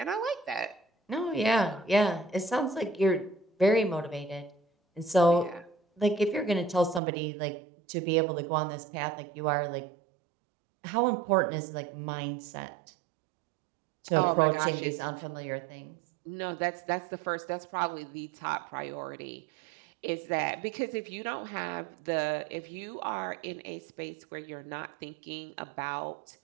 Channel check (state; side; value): drops out; left; at 7.0 s